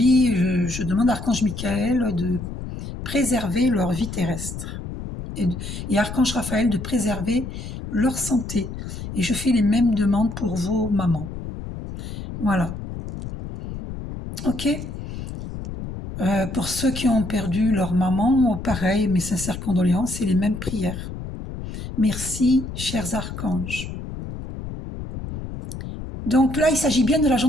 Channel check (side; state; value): left; noise; rumble, 8 dB below the sound